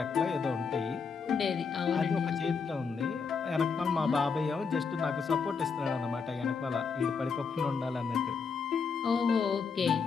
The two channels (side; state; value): right; quieter; 5.5 dB